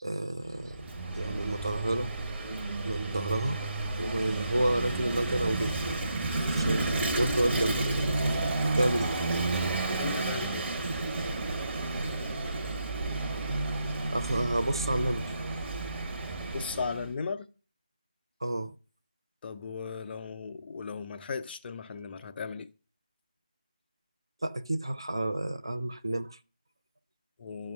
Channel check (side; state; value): both; inverted; correlation -0.81